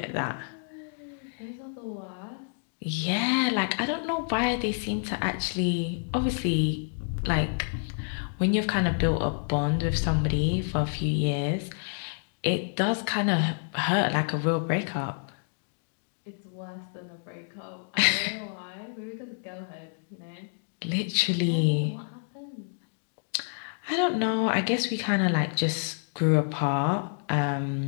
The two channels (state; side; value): silent; right; digital silence